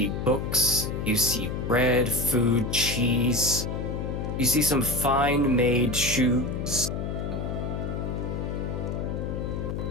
books, you see bread, food, cheese. You see some fine made shoes.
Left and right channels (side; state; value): left; noise; hum, 3 dB below the sound